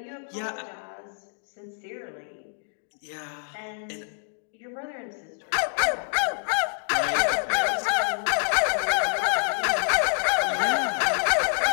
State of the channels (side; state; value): right; silent; digital silence